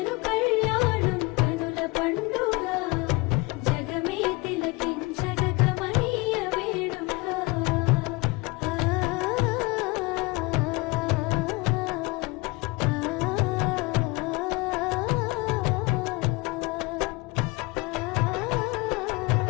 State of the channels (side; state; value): right; quieter; 24.8 dB